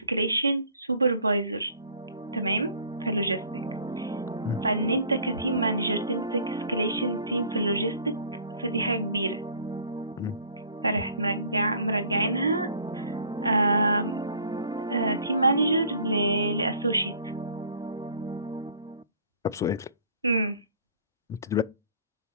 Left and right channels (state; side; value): inverted; both; correlation -0.53